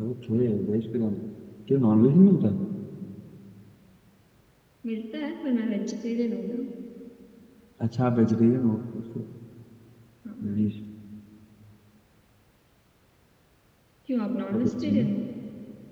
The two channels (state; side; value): identical; both; correlation 1.00